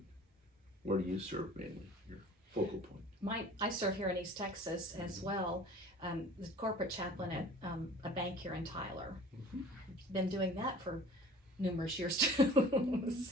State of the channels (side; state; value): both; normal; correlation 0.45